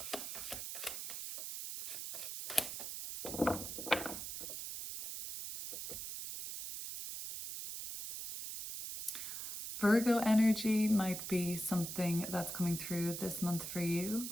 Virgo energy might be something that's coming through this month for you.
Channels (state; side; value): noise; right; hiss, 6 dB below the sound